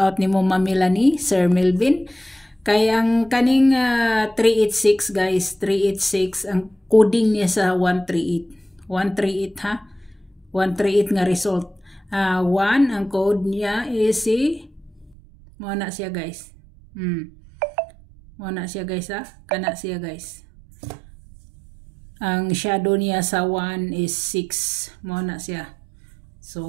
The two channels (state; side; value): drops out; left; at 15.2 s